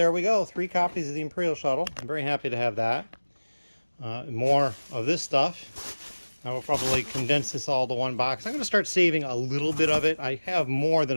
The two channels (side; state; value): both; inverted; correlation -1.00